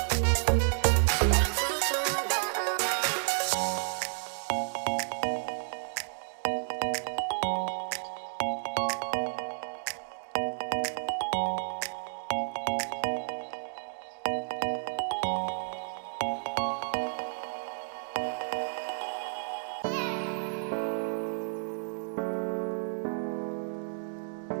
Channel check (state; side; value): silent; left; digital silence